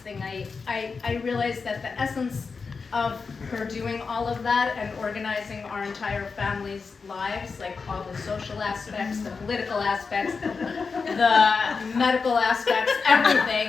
I realized that the essence of her doing all of that and organizing our entire family's lives, like all the social aspects, the political aspects, the medical aspects,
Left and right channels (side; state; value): right; quieter; 4.9 dB